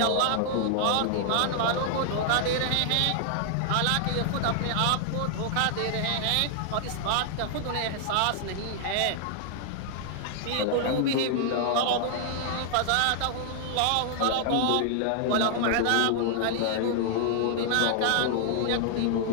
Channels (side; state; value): both; different; correlation -0.01